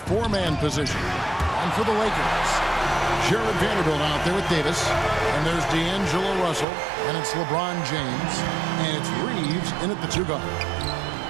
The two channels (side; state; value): left; drops out; at 6.7 s